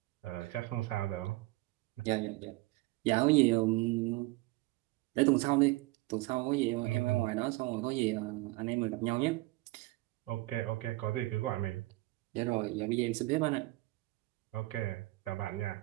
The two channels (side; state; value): left; quieter; 21.3 dB